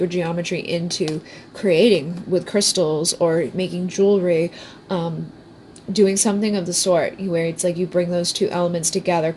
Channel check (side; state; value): both; identical; correlation 1.00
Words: geometry into creating with crystals or making jewelry, doing something of the sort where it's like you bring those two elements together,